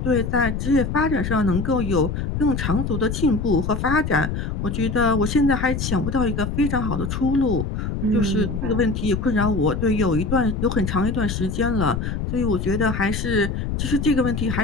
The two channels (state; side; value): noise; left; rumble, 3 dB below the sound